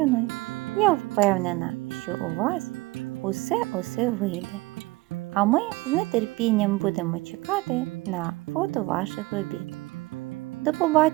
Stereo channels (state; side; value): quieter; left; 21.6 dB